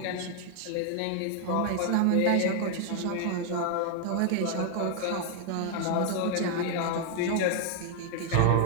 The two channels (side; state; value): both; different; correlation 0.00